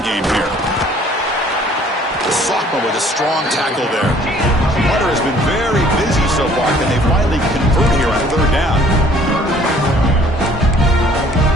game here. Sophomore with a strong tackle there. Hunter has been very busy so far. Can they finally convert here on 3rd down?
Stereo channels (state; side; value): normal; both; correlation 0.57